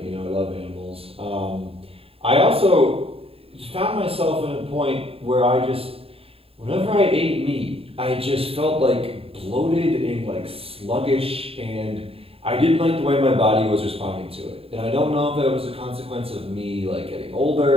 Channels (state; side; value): late; left; 0.27 ms